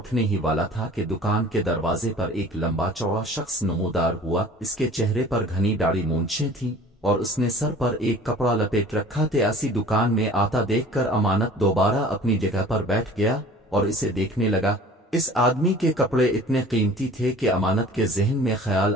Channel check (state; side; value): normal; both; correlation 0.46